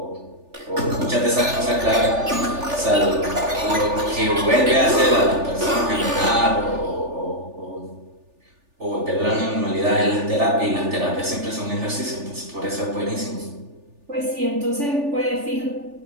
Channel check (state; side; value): late; left; 3.4 ms